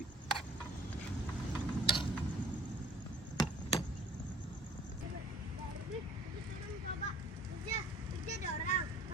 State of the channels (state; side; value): normal; both; correlation 0.50